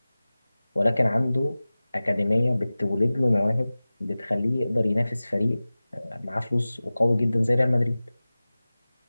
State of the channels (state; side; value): inverted; both; correlation -0.98